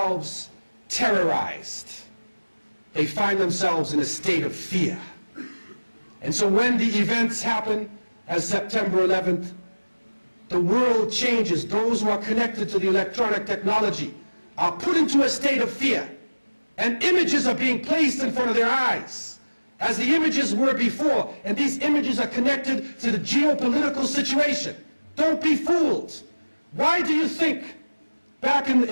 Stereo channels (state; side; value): inverted; both; correlation -1.00